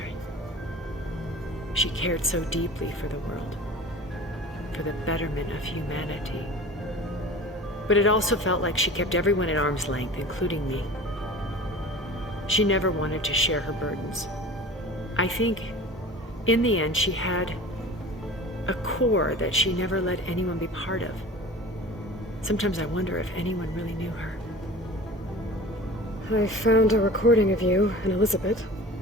She cared so deeply for the world, for the betterment of humanity. But it also felt like she kept everyone at arm's length, including me. She never wanted to share her burdens. I think, in the end, she had a core that she never let anyone be part of. Sometimes I wonder if anyone really knew her. I found a recording of you and Elizabeth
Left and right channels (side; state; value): both; normal; correlation 0.39